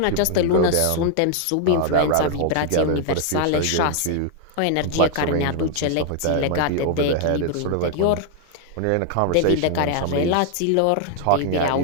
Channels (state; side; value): different; both; correlation 0.00